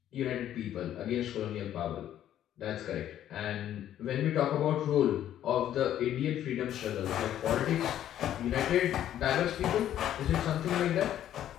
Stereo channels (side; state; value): right; quieter; 11.4 dB